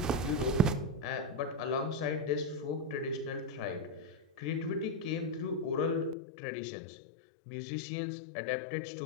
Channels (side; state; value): right; drops out; at 6.2 s